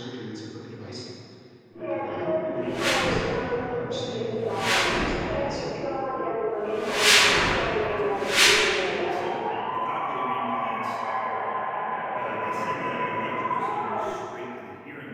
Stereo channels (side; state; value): both; identical; correlation 1.00